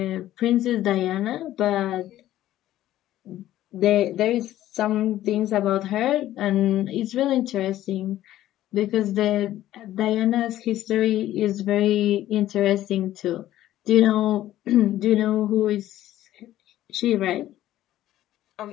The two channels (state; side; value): quieter; right; 13.7 dB